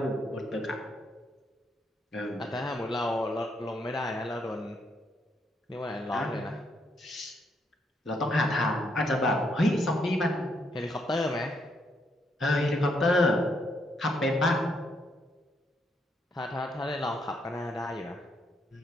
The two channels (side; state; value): both; normal; correlation 0.75